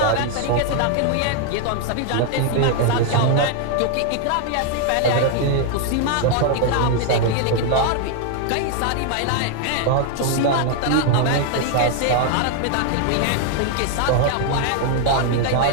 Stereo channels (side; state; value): both; different; correlation 0.00